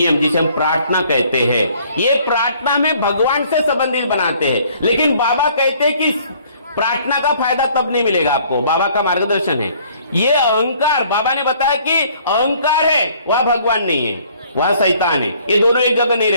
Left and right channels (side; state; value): both; inverted; correlation -0.59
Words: जिसे हम प्रार्थना कहते हैं, ये प्रार्थना में भगवान से संबंधित बनाते हैं। लेकिन बाबा कहते हैं कि प्रार्थना का फायदा तब नहीं मिलेगा आपको, बाबा का मार्गदर्शन है। ये अहंकार, बाबा ने बताया कि अहंकार है, वह भगवान नहीं है, वह शैतान है। ये दोनों एक जगह नहीं